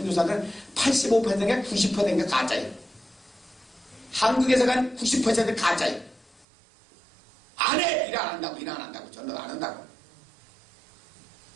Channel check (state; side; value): drops out; left; at 6.5 s